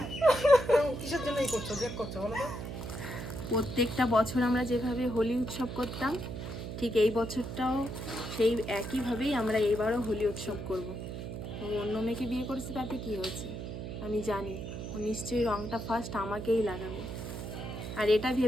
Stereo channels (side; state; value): right; noise; hum, 7 dB below the sound